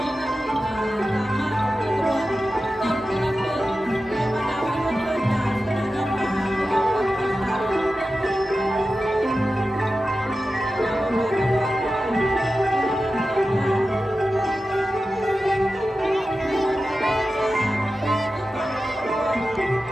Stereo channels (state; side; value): normal; both; correlation 0.93